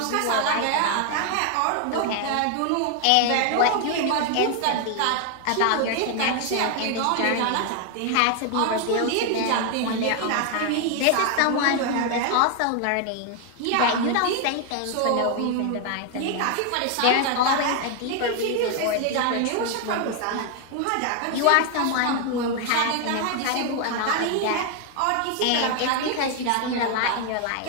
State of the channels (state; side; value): different; both; correlation 0.00